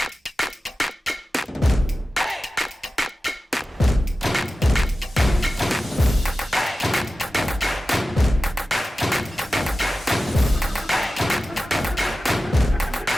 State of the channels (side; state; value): both; normal; correlation 0.95